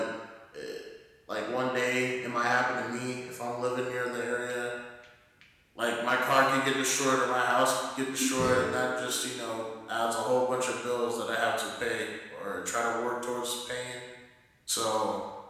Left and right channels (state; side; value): identical; both; correlation 1.00